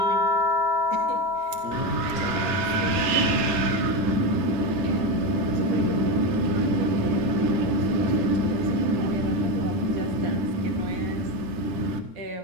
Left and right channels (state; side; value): late; left; 9.9 ms